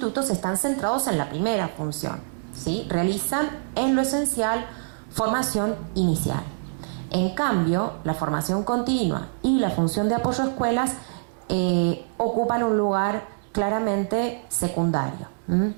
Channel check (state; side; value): silent; left; digital silence